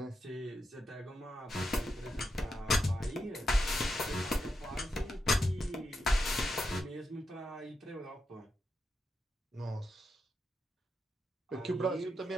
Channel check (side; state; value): both; normal; correlation 0.85